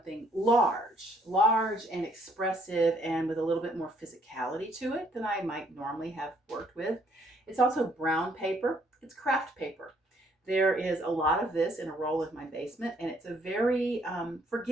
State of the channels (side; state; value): both; normal; correlation 0.66